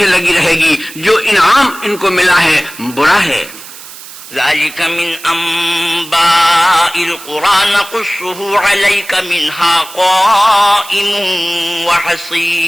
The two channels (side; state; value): right; noise; hiss, 16 dB below the sound